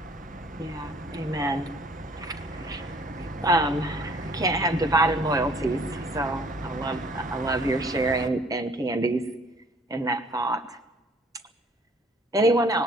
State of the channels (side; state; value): both; normal; correlation 0.57